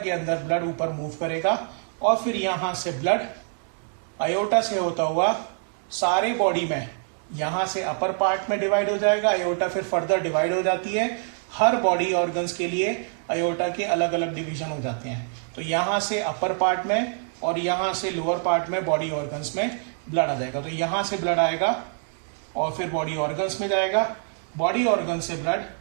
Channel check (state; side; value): silent; left; 61 dB below the other